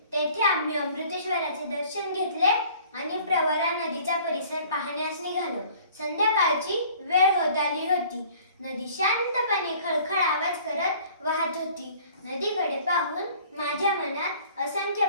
तेथे आम्ही अमृतेश्वराचे दर्शन घेतले आणि प्रवरा नदीचा परिसर पाहण्यास निघालो. संध्याकाळची वेळ होत आली होती. नदी शांतपणे खळखळ आवाज करत वाहत होती. नदीकडे पाहून माझ्या मनात असंख्य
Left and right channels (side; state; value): both; inverted; correlation -0.52